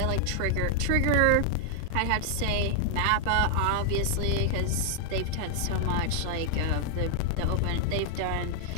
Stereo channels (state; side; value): different; both; correlation 0.00